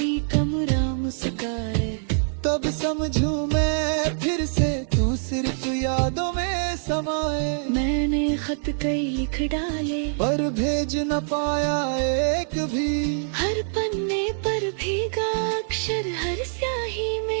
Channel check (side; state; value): left; silent; digital silence